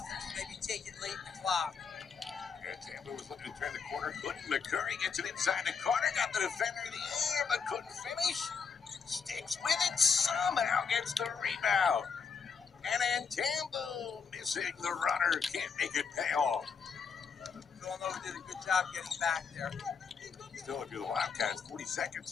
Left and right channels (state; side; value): quieter; right; 5.8 dB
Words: maybe take it late in the clock. And Tampa was looking to turn the corner, couldn't. McCurry gets it inside the corner, got the defender in the air, but couldn't finish. Sticks with it, somehow gets the rebound. And then Tampa missing the runner, can't make it pay off. Villanova did a good job getting back there. Still, if you're the Wildcats, 40